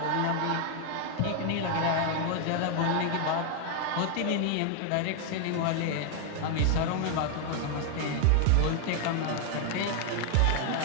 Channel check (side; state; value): both; different; correlation 0.00